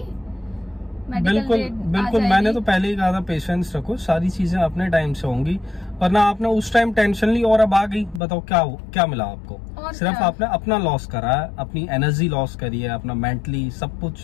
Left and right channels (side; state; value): right; drops out; at 8.2 s